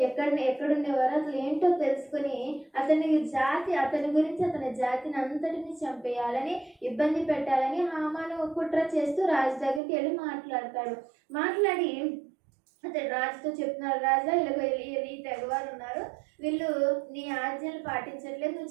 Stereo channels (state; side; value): drops out; left; at 9.8 s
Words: ఎక్కడుండేవారు, అసలు ఏంటో తెలుసుకుని అతని గురించి అతని జాతిని అంతటిని చంపేయాలని, ఇబ్బంది పెట్టాలని హామాను కుట్ర చేస్తూ రాజు దగ్గరికి వెళ్ళి మాట్లాడి అతడు రాజుతో చెప్తున్నాడు, రాజా ఇలా ఈ తెగవారు ఉన్నారు, వీళ్ళు నీ ఆజ్ఞలు పాటించట్లేదు,